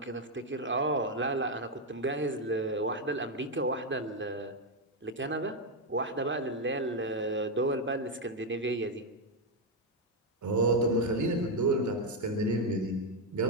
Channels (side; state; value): both; normal; correlation 0.03